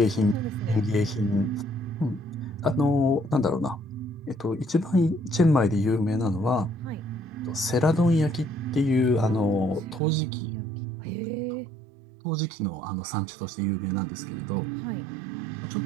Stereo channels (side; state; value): left; drops out; at 10.0 s